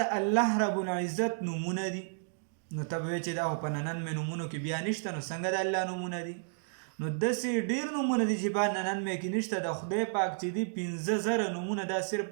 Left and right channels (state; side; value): silent; left; digital silence